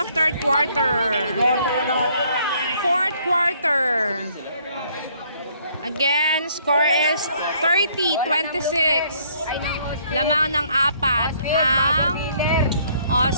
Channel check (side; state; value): both; inverted; correlation -0.64